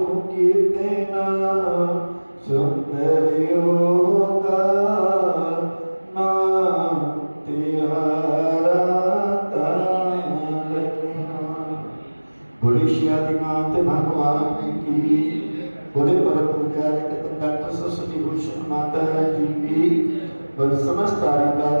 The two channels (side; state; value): both; inverted; correlation -1.00